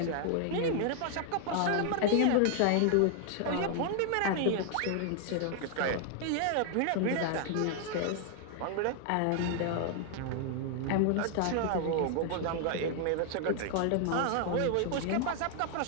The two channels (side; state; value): both; different; correlation 0.00